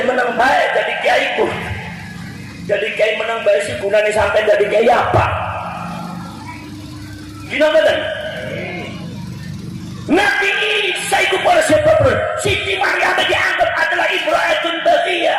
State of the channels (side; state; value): both; identical; correlation 1.00